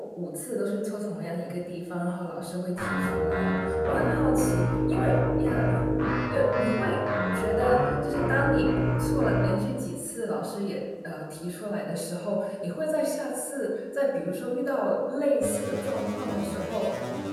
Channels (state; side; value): identical; both; correlation 1.00